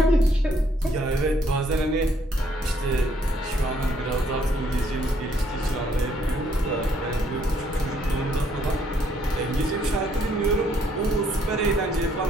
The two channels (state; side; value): normal; both; correlation 0.68